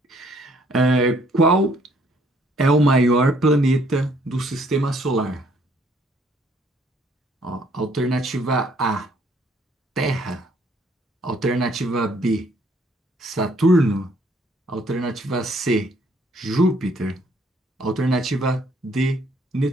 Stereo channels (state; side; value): normal; both; correlation 0.64